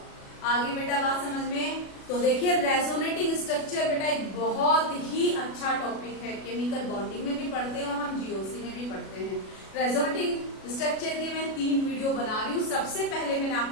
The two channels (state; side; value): late; right; 37 ms